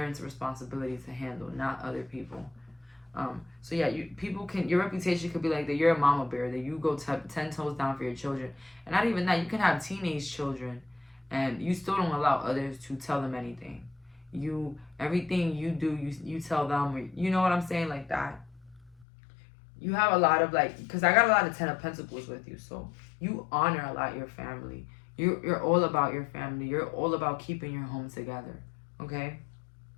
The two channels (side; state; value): right; drops out; at 19.1 s